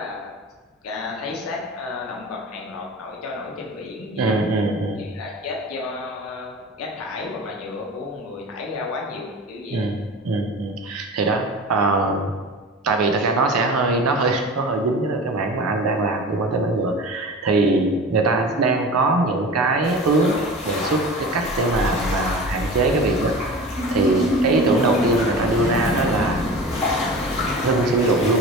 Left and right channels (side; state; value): both; normal; correlation 0.34